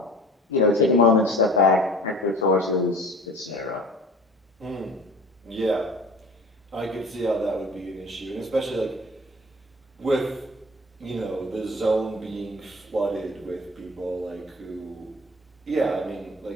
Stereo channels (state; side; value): normal; both; correlation 0.43